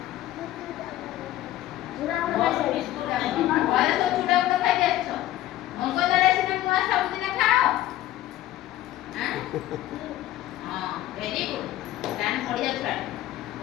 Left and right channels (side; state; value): right; quieter; 14.5 dB